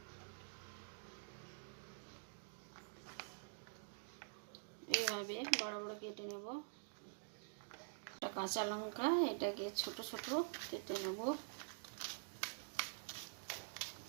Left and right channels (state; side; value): silent; left; digital silence